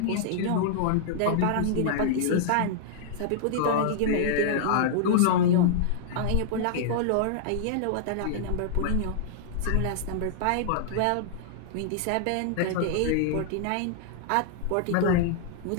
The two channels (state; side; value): different; both; correlation -0.01